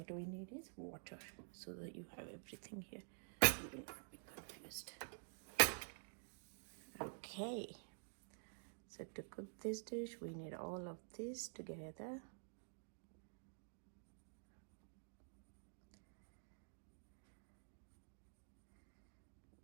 we need is water, so that you have everything here. You will not be confused. Okay, so to cook this dish we need all of this together.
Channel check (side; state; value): left; silent; digital silence